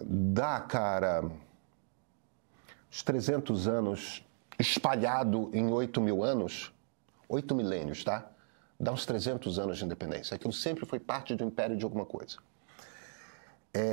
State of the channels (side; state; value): left; silent; digital silence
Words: dá, cara, os 300 anos espalhado em 8 mil anos, 8 milênios, tá? Dá uns 300 anos de independência. Aquilo sempre foi parte do império de alguma coisa.